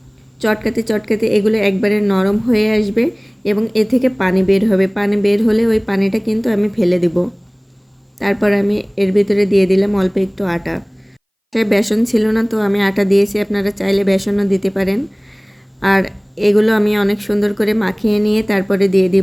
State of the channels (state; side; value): identical; both; correlation 1.00